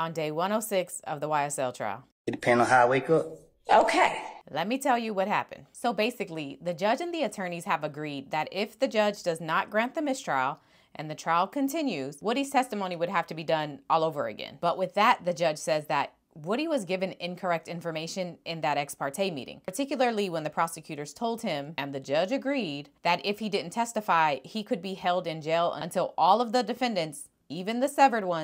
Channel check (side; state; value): both; identical; correlation 1.00